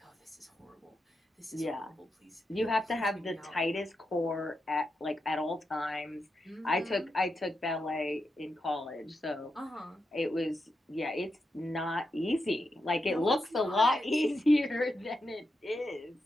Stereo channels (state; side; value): normal; both; correlation 0.87